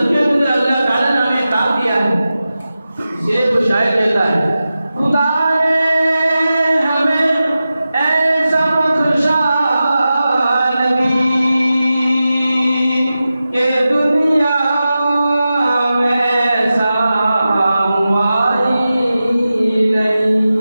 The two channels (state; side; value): inverted; both; correlation -0.93